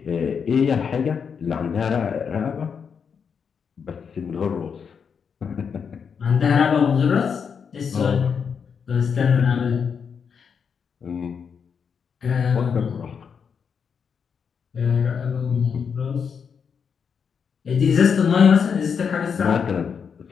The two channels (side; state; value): right; quieter; 6.5 dB